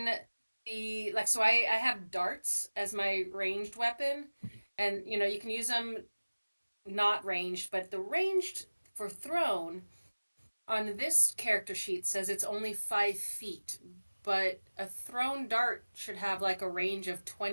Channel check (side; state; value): both; inverted; correlation -1.00